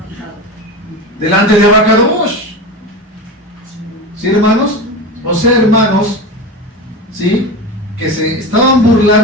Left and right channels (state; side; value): normal; both; correlation 0.26